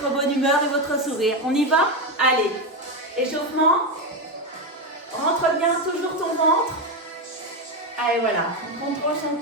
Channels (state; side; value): normal; both; correlation 0.11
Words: bonne humeur et votre sourire. On y va? Allez, échauffement. Rentre bien toujours ton ventre. Allez, voilà. On contrôle son